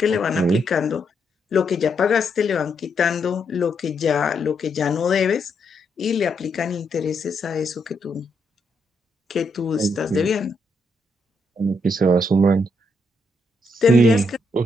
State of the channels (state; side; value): normal; both; correlation 0.78